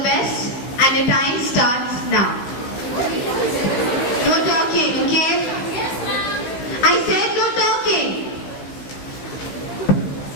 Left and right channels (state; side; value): late; right; 16 ms